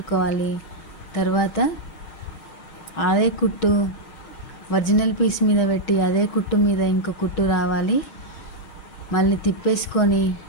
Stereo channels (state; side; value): late; right; 5.5 ms